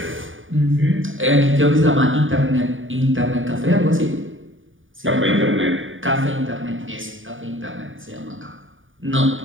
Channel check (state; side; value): late; left; 0.57 ms